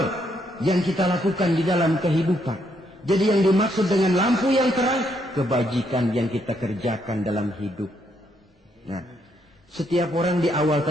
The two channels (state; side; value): normal; both; correlation 0.74